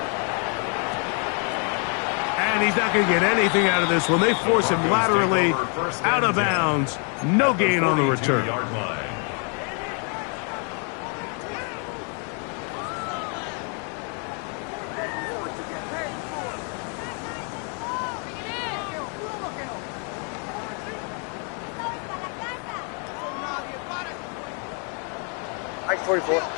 And he's not going to get anything out of this one. They force him laterally out of bounds. No gain on the return. Ice 44.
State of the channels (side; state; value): right; quieter; 39.8 dB